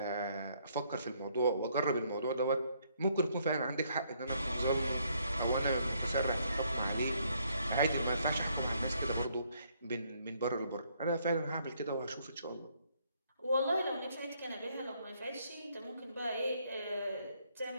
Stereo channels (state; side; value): inverted; both; correlation -0.69